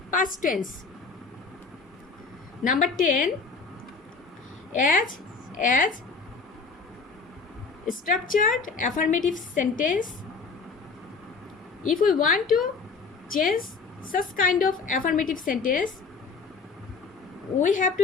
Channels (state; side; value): quieter; right; 4.7 dB